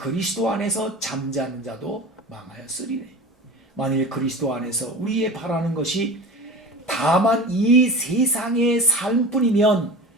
안에서 잠자는 자도 망하였으리래. 만일 그리스도 안에서 우리의 바라는 것이 다만 이 세상의 삶뿐이면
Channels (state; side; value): normal; both; correlation 0.34